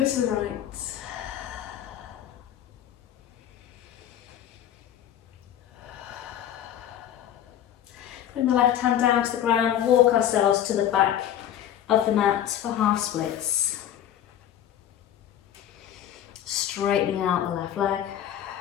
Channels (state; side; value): quieter; right; 10.8 dB